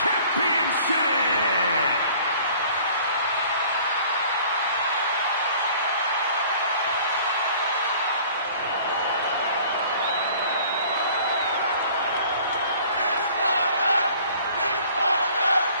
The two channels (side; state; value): both; inverted; correlation -0.51